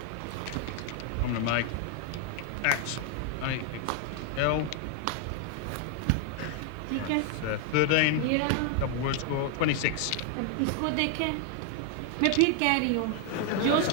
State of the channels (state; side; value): different; both; correlation 0.00